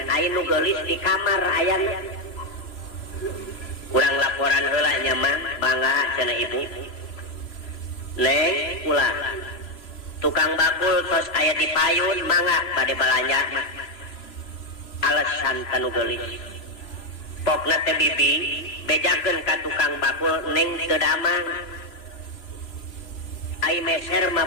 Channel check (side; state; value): right; late; 3.0 ms